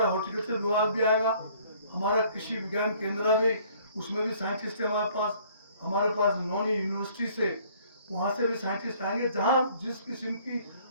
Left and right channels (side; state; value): both; inverted; correlation -0.58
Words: हॉर्टिकल्चर विभाग भी आएगा, हमारा कृषि विज्ञान केंद्र भी, उसमें भी साइंटिस्ट है हमारे पास नौनी यूनिवर्सिटी से, वहाँ से भी साइंटिस्ट आएंगे। जहाँ जिस किस्म की